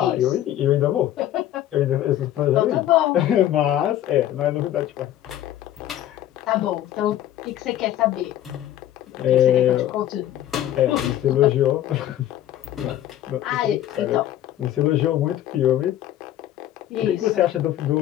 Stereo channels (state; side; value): quieter; right; 12.5 dB